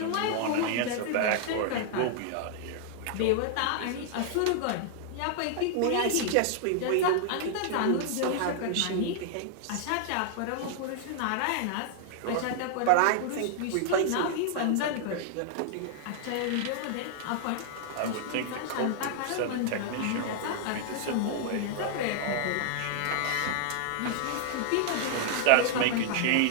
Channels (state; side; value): different; both; correlation -0.01